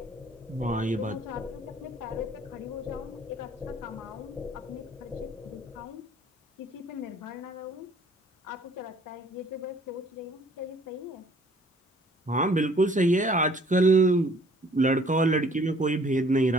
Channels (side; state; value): both; normal; correlation 0.56